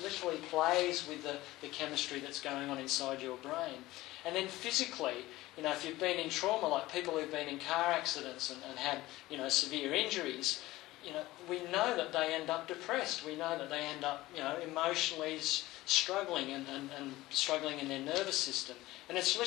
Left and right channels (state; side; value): quieter; right; 17.8 dB